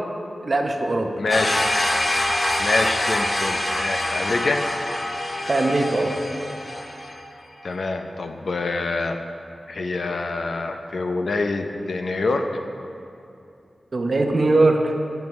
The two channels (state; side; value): normal; both; correlation 0.93